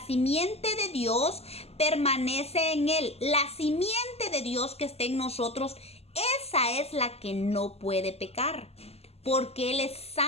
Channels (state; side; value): late; right; 0.30 ms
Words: simiente de Dios permanece en él. La simiente de Dios que está en nosotros, esa es la que no puede pecar. Porque Él es